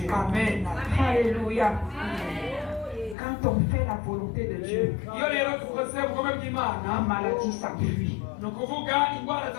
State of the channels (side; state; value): right; drops out; at 3.2 s